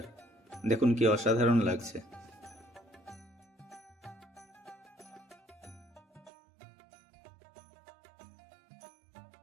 দেখুন কি অসাধারণ লাগছে।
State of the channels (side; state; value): left; drops out; at 6.3 s